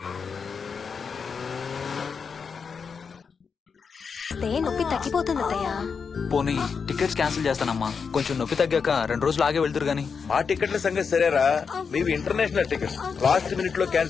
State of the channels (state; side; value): quieter; right; 5.8 dB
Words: నొప్పి తగ్గిపోతుంది అత్తయ్య. పోనీ టికెట్స్ క్యాన్సిల్ చేస్తానమ్మా. కొంచెం నొప్పి తగ్గాక 2 రోజులు ఆగే వెళ్తురు గానీ. మా టికెట్ల సంగతి సరేరా, మీవి ఇంటర్నేషనల్ టికెట్స్. లాస్ట్ మినిట్ లో